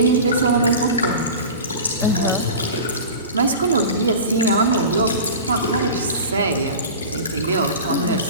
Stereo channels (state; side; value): inverted; both; correlation -0.33